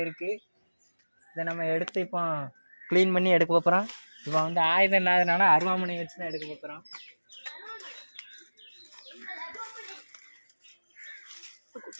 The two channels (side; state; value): both; inverted; correlation -1.00